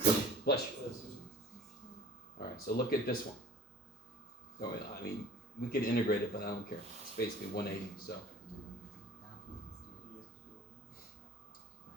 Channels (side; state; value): both; normal; correlation 0.47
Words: Bless you. Alright, so look at this one. Oh, I mean, we could integrate it, but I don't care. It's basically 180, so.